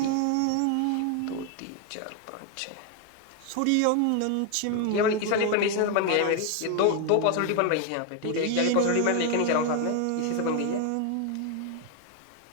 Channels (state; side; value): different; both; correlation 0.01